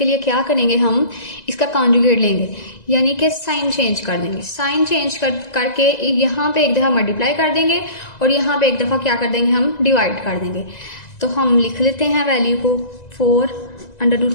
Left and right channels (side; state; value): right; late; 1.9 ms